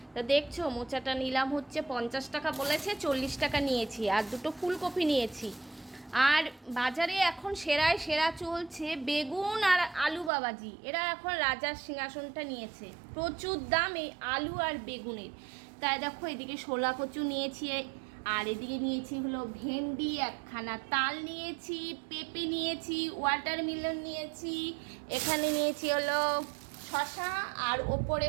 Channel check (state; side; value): drops out; left; at 10.3 s